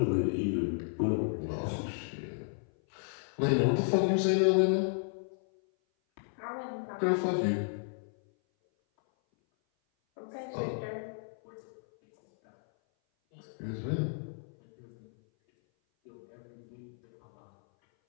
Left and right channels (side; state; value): right; silent; 56 dB below the other